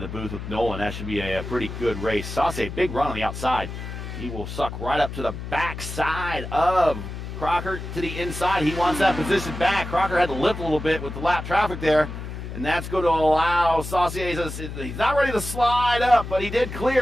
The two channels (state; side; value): noise; left; hum, 8 dB below the sound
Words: the booth with Nolan. That should be a pretty good race. Saucier, big run on the outside. He will suck right up to the backside of Crocker to the inside. He wants that position back. Crocker had to lift a little bit with the lap traffic there, and that's going to allow Saucier. He's not ready to slide up, but he did